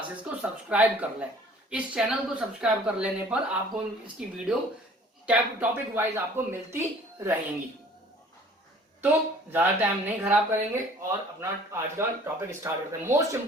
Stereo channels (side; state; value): both; normal; correlation 0.52